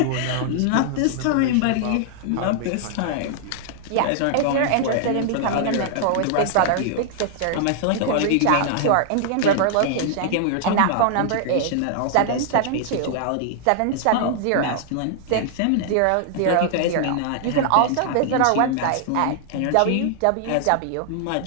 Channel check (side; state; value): both; different; correlation 0.00